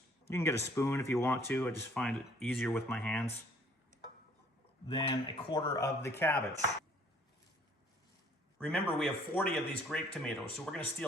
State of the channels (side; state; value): both; normal; correlation 0.59